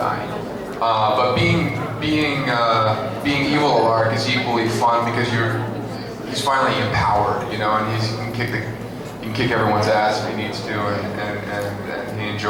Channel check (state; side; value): identical; both; correlation 1.00